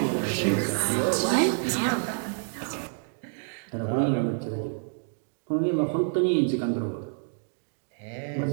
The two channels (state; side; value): silent; left; digital silence